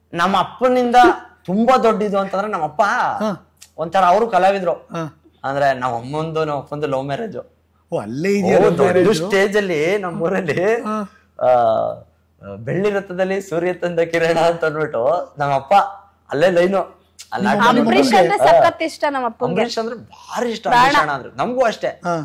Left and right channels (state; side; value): identical; both; correlation 1.00